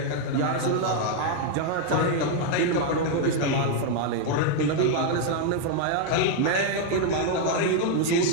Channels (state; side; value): different; both; correlation 0.00